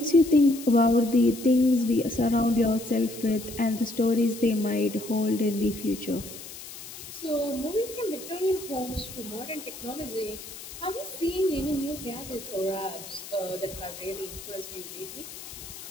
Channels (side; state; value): left; noise; hiss, 13 dB below the sound